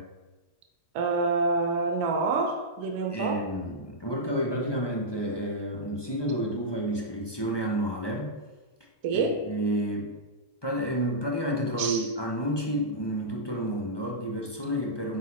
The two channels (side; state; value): right; late; 1.2 ms